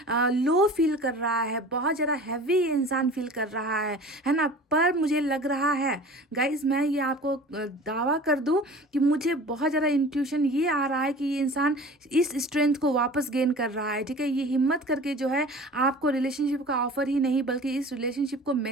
लो फील कर रहा है, बहुत ज़्यादा हैवी इंसान फील कर रहा है ना। पर मुझे लग रहा है गाइस, मैं ये आपको दावा कर दूं कि मुझे बहुत ज़्यादा इंट्यूशन ये आ रहा है कि ये इंसान इस स्ट्रेंथ को वापस गेन कर रहा है। ठीक है, ये हिम्मत करके जो है आपको रिलेशनशिप का ऑफर ही नहीं बल्कि इस रिलेशनशिप को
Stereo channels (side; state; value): both; normal; correlation 0.41